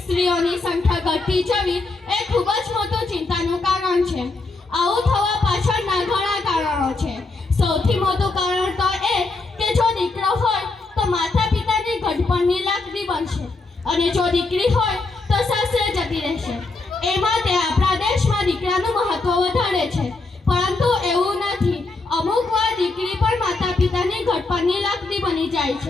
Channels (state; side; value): quieter; right; 3.5 dB